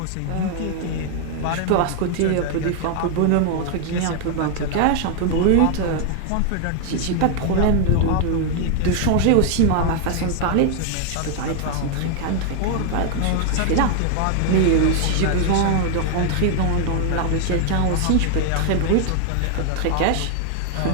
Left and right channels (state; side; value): different; both; correlation 0.00